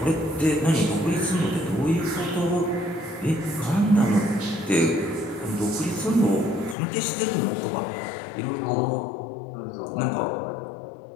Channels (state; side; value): drops out; right; at 6.8 s